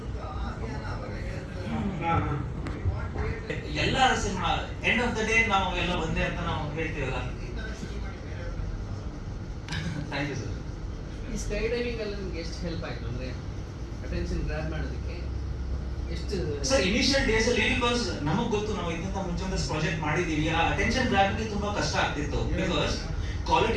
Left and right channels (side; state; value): both; identical; correlation 1.00